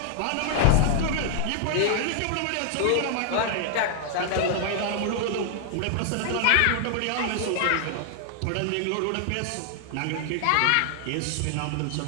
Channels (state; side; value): different; both; correlation 0.00